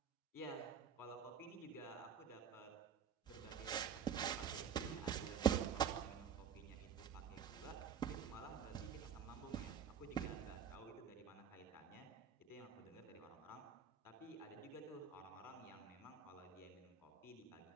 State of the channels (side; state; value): left; quieter; 7.5 dB